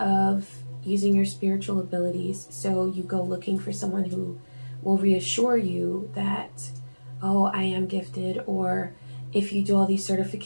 using your spiritual abilities, so you go looking for someone who will reassure you that, oh, I am gifted, or if you do all these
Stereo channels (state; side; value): inverted; both; correlation -1.00